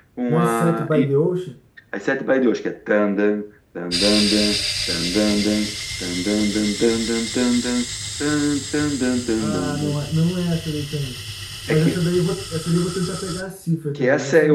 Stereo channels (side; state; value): both; identical; correlation 1.00